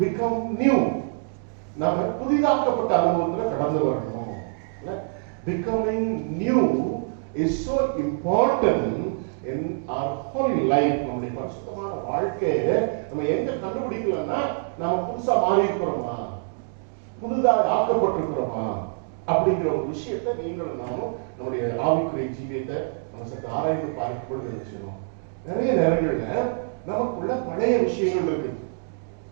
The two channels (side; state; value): left; silent; digital silence